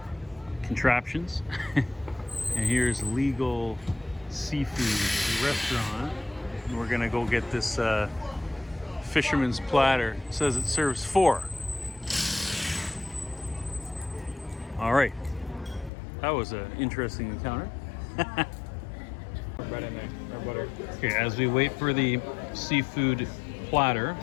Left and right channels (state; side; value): drops out; right; at 15.9 s